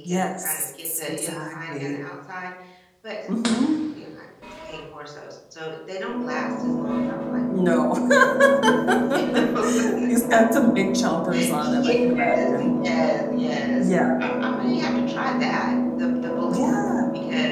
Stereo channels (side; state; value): both; identical; correlation 1.00